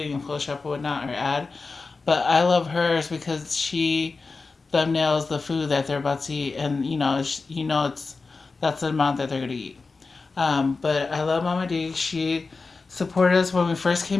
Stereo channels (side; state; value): right; quieter; 4.1 dB